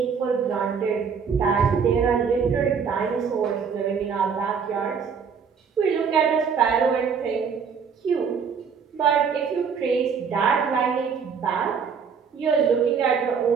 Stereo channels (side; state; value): left; quieter; 6.3 dB